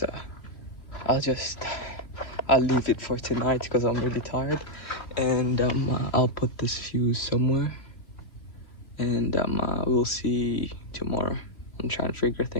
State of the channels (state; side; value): late; right; 3.0 ms